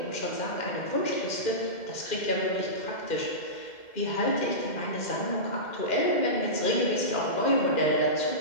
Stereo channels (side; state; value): right; late; 2.1 ms